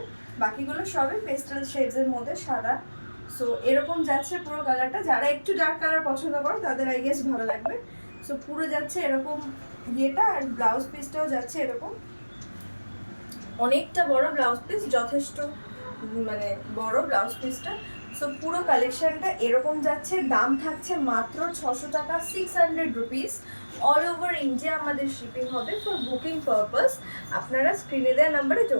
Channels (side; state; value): both; inverted; correlation -1.00